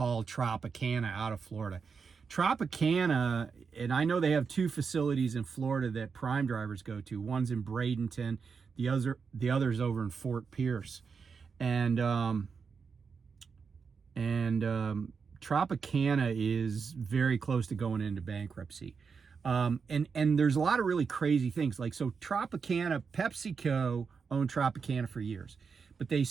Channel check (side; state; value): left; quieter; 5.6 dB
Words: Tropicana out of Florida. Tropicana, and I know they have two facilities in Florida that prime drivers go to. One's in Bradenton, the other's over in Fort Pierce. And Tropicana is very close to going into bankruptcy. And there's a lot of really crazy things. Like, so Tropicana, PepsiCo owned Tropicana for years, but they